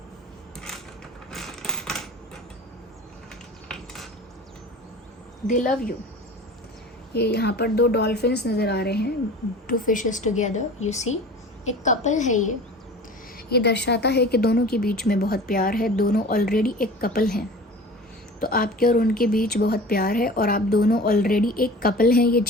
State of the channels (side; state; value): both; normal; correlation 0.39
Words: दे लव यू। ये यहाँ पर दो डॉल्फिन्स नज़र आ रहे हैं, to fishes together, you see. एक कपल है ये दर्शाता है कि दोनों के बीच में बहुत प्यार है, दोनों ऑलरेडी एक कपल हैं। तो आपके और उनके बीच बहुत प्यार है और आप दोनों ऑलरेडी एक कपल हैं, ये